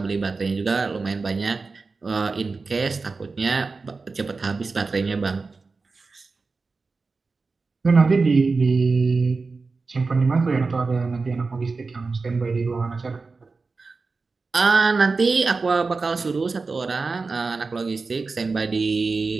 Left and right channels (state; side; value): quieter; left; 4.1 dB